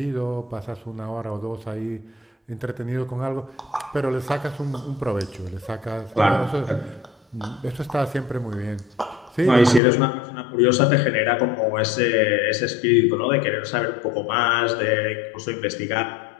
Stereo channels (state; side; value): drops out; right; at 9.8 s